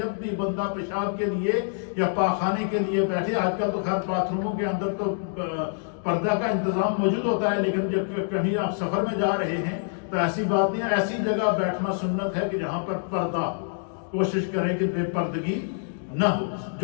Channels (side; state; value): right; silent; digital silence